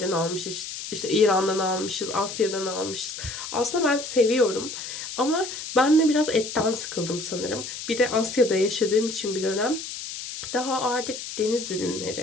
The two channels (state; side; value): noise; left; hiss, 8 dB below the sound